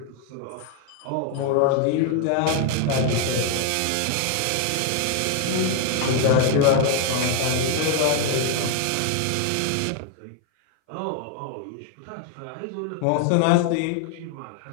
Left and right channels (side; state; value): both; different; correlation 0.01